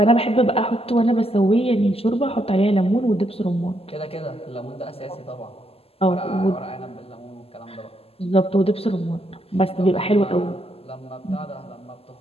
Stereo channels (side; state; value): right; late; 0.29 ms